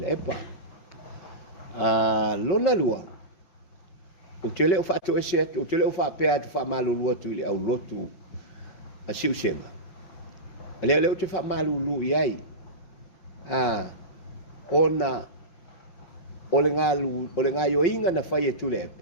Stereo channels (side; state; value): right; late; 5.8 ms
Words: epa lona lua o tele o whaatu ese atu o tele o whaapea atu whaamalulua tu i le au lotu a siusenga leo te whaamalulu i ai ona o le ngā yoinga na whai e tule